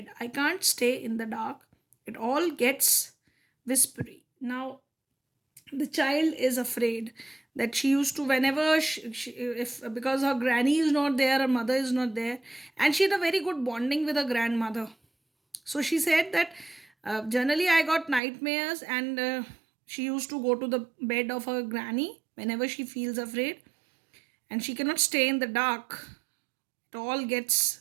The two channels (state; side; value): drops out; left; at 18.2 s